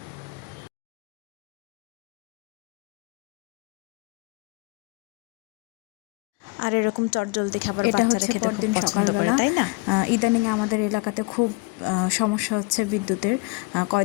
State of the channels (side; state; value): right; quieter; 28.1 dB